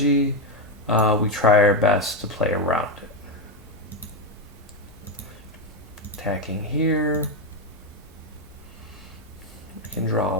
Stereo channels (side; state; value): both; normal; correlation 0.08